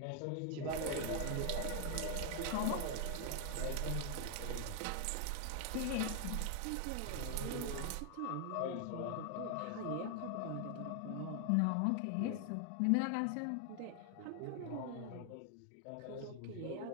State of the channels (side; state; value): both; different; correlation 0.00